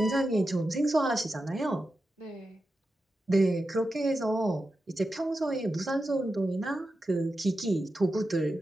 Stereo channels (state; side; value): normal; both; correlation 0.90